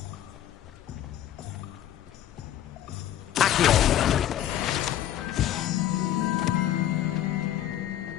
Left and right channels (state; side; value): quieter; right; 11.8 dB